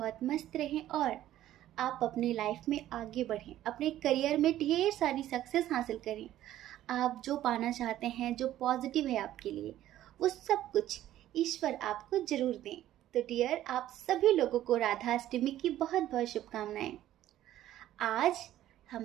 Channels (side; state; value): left; quieter; 13.2 dB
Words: मस्त रहें और आप अपने लाइफ में आगे बढ़ें, अपने करियर में ढेर सारी सक्सेस हासिल करें। आप जो पाना चाहते हैं, जो पॉजिटिव है आपके लिए, वो सब कुछ ईश्वर आपको जरूर दें। तो डियर, आप सभी लोगों को राधा अष्टमी की बहुत बहुत शुभकामनाएं। आज